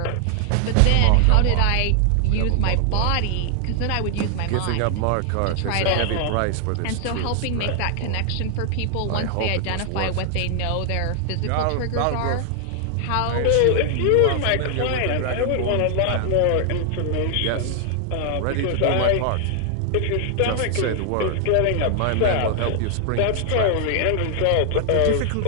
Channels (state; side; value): different; both; correlation 0.00